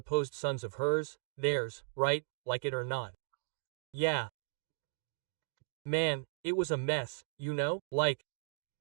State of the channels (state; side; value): silent; left; digital silence